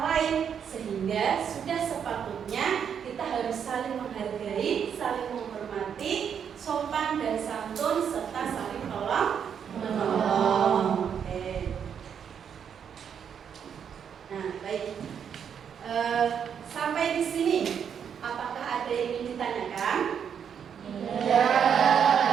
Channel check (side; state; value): left; quieter; 7.8 dB